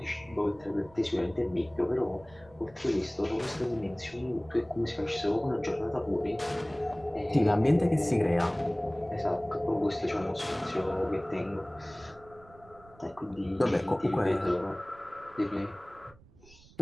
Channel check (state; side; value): noise; right; rumble, 25 dB below the sound